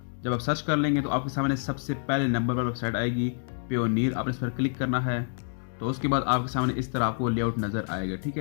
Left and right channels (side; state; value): right; silent; digital silence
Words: जब आप सर्च कर लेंगे तो आपके सामने सबसे पहले नंबर पर वेबसाइट आएगी पेयोनियर, आपने इस पर क्लिक करना है। तो उसके बाद आपके सामने इस तरह आपको लेआउट नज़र आएगा, ठीक